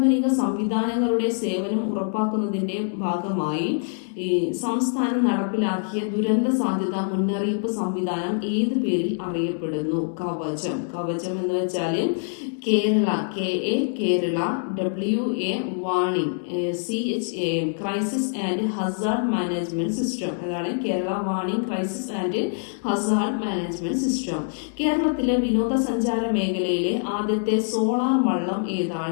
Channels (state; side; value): silent; right; 60 dB below the other